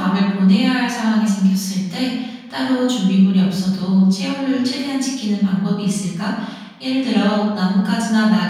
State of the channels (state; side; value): identical; both; correlation 1.00